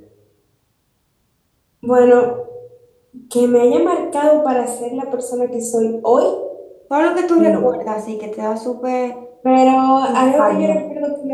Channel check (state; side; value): identical; both; correlation 1.00